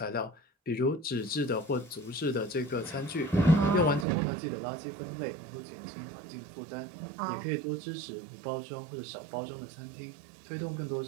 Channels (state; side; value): drops out; left; at 4.0 s